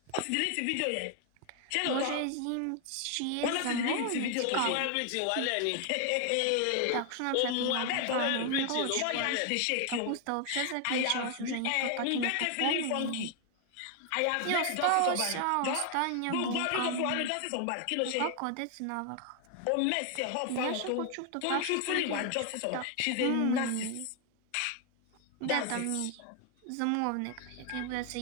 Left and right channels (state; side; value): different; both; correlation 0.00